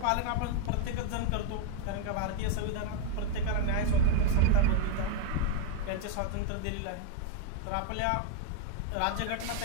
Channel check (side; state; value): both; different; correlation 0.01